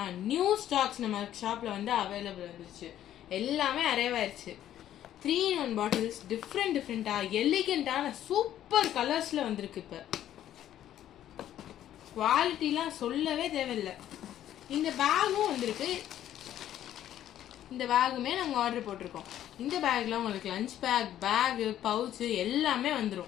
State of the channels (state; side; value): quieter; right; 11.7 dB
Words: நியூ ஸ்டாக்ஸ் நம்ம ஷாப்ல வந்து அவைலபிள் வந்துருச்சு. எல்லாமே அரைவாயிருச்சு. 3-in-1 பாட்டில்ஸ் டிஃப்ரெண்டா எலிகென்ட்டான சூப்பர் கலர்ஸ்ல வந்திருக்கு. இப்போ குவாலிட்டிலாம் சொல்லவே தேவையில்லை. இந்த பேகும் வந்திருக்கு. இந்த பேகுமே நாங்கள் ஆர்டர் போட்டிருக்கோம். இந்த பேக்ல உங்களுக்கு லஞ்ச் பேகு, பவுச்சு எல்லாமே